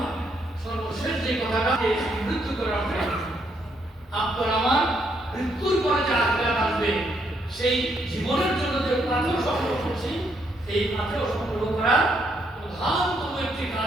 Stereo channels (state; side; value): normal; both; correlation 0.74